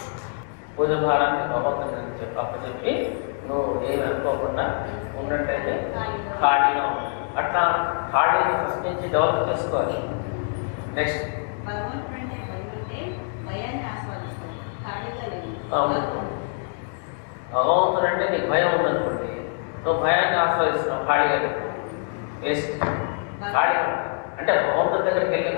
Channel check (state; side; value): silent; right; 62 dB below the other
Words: పూజ భారాన్ని భగవంతుని చెప్పి నువ్వు ఏమి అనుకోకుండా ఉన్నట్టయితే ఖాళీగా ఉంటుంది. అట్లా ఖాళీని ఫస్ట్ నుంచి డెవలప్ చేసుకోవాలి. నెక్స్ట్ భగవంతుడు అంటే భయం ఉంటే భయాన్ని ఆస్వాదిస్తాం, ఖాళీగా లేదు. భగవంతుడు అంటే నీకు భయం ఉందనుకోండి, నువ్వు భయాన్ని ఆస్వాదిస్తున్నావు, ఖాళీగా లేదు. వేస్ట్. ఖాళీ అంటే భగవంతుడి దగ్గరికి వెళ్ళి